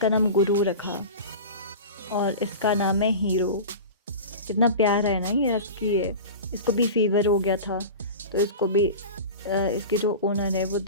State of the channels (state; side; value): inverted; both; correlation -0.31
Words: नाम गुरु रखा। और इसका नाम है हीरो। कितना प्यारा है ना, ये हस्की है। इसको भी फीवर हो गया था, तो इसको भी इसके जो ओनर है वो